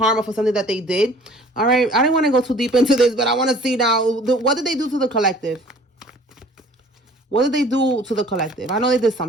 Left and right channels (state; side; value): normal; both; correlation 0.51